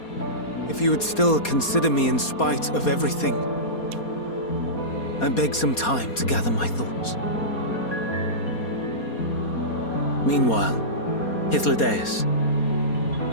If you would still consider me in spite of everything, I beg some time to gather my thoughts. Meanwhile, Hythlodaeus,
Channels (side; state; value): right; late; 4.2 ms